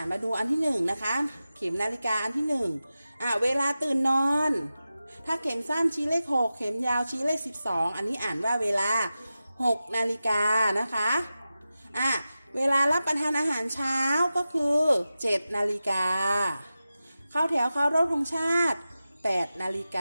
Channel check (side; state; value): both; inverted; correlation -0.94